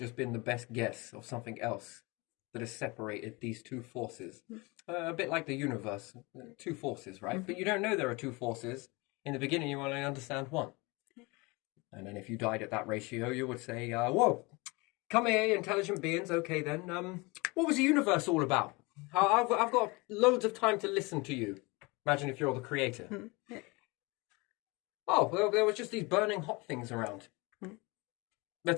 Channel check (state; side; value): quieter; right; 25.8 dB